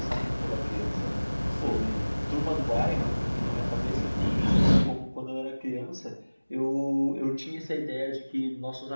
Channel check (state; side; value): inverted; both; correlation -1.00